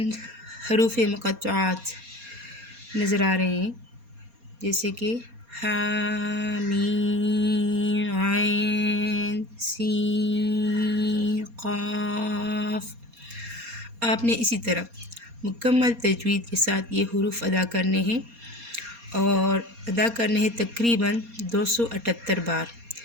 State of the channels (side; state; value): left; late; 4.2 ms